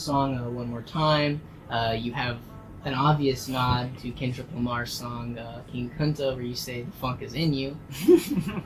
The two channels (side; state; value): both; identical; correlation 1.00